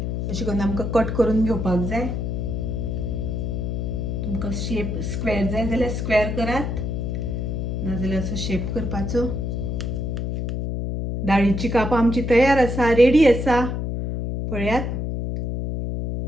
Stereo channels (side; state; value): left; noise; hum, 2 dB below the sound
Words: अशें करून आमकां कट करून घेवपाक जाय। तुमकां शेप स्क्वेअर जाय जाल्यार स्क्वेअर करात, नाजाल्यार असो शेप करपाचो. दाळीची कापां आमची तयार आसा, रेडी आसा. पळयात,